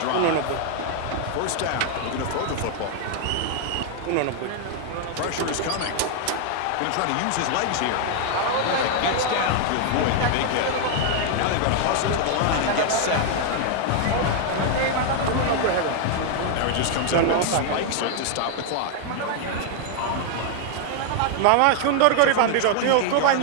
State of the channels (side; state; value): both; different; correlation 0.00